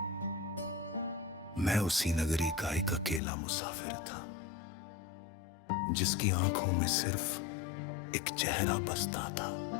मैं उसी नगरी का एक अकेला मुसाफिर था, जिसकी आंखों में सिर्फ एक चेहरा बसता था,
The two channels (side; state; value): right; drops out; at 3.2 s